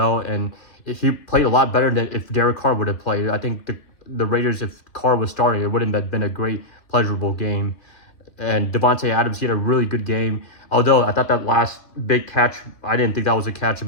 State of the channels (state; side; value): late; right; 2.6 ms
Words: and he played a lot better than if Derek Carr would have played. I think the Raiders, if Carr was starting, it wouldn't have been a great, pleasurable game. And Devontae Adams, he had a really good game. Although I thought that last big catch, I didn't think that was a catch,